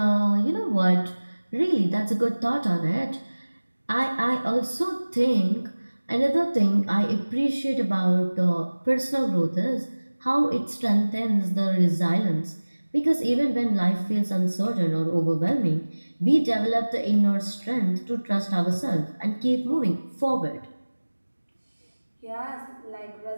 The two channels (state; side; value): inverted; both; correlation -1.00